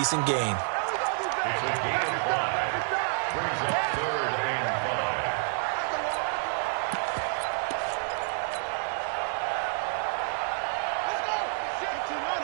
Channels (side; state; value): left; silent; 59 dB below the other